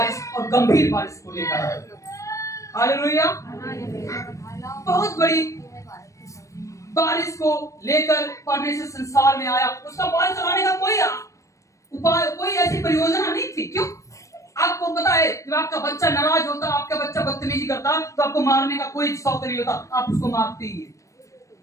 और गंभीर बारिश को लेकर आए। हालेलुया। बहुत बड़ी बारिश को लेकर परमेश्वर संसार में आया। उसका बारिश चलाने का कोई उपाय, कोई ऐसी परियोजना नहीं थी। क्यों? आपको पता है, जब आपका बच्चा नाराज होता, आपका बच्चा बदतमीजी करता, तो आपको मारने का कोई शौक नहीं होता, आप उसको मारते ही हैं।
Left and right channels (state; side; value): late; right; 0.15 ms